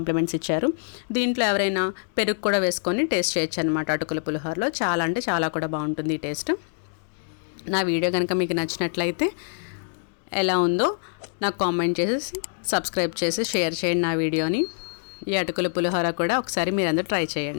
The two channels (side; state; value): right; silent; digital silence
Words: ఇచ్చారు. దీంట్లో ఎవరైనా పెరుగు కూడా వేసుకొని టేస్ట్ చేయొచ్చు అనమాట. అటుకుల పులిహోరలో చాలా అంటే చాలా కూడా బాగుంటుంది ఈ టేస్ట్. నా వీడియో కనుక మీకు నచ్చినట్లయితే ఎలా ఉందో నాకు కామెంట్ చేసి సబ్స్క్రైబ్ చేసి షేర్ చేయండి నా వీడియోని. ఈ అటుకుల పులిహోర కూడా ఒకసారి మీరందరూ ట్రై